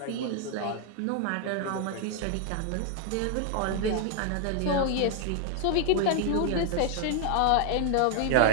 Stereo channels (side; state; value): both; different; correlation 0.00